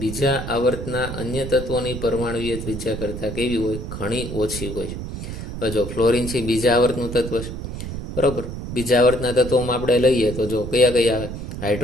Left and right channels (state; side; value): noise; right; rumble, 7 dB below the sound